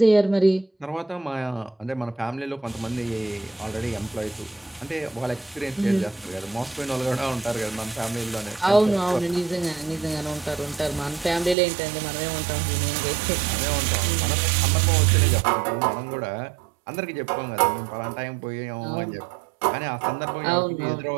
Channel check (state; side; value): drops out; left; at 11.6 s